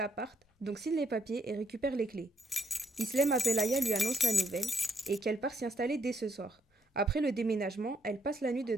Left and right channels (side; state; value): both; normal; correlation 0.73